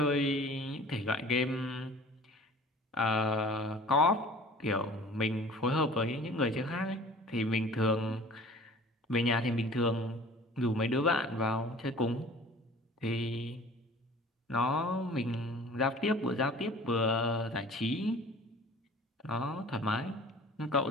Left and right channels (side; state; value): both; normal; correlation 0.46